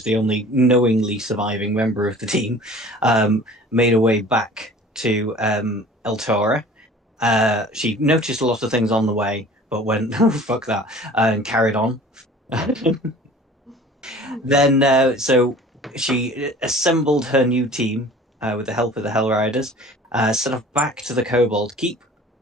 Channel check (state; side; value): normal; both; correlation 0.45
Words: the only knowingly surviving member of the team, made her way back to El Tora. She noticed a lot of things on the way, but went, oh, fuck that, and carried on. Then, so she assembled her new team with the help of the Hell Riders, set off back to the Kobold Keep,